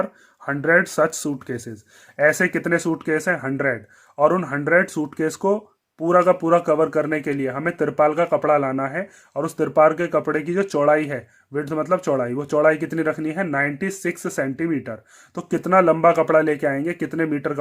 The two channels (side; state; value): both; identical; correlation 1.00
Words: 100 such suitcases. ऐसे कितने सूटकेस हैं 100, और उन 100 सूटकेस को पूरा का पूरा कवर करने के लिए हमें तिरपाल का कपड़ा लाना है, और उस तिरपाल के कपड़े की जो चौड़ाई है, विड्थ मतलब चौड़ाई, वो चौड़ाई कितनी रखनी है 96 सेंटीमीटर। तो कितना लंबा कपड़ा लेके आएंगे, कितने मीटर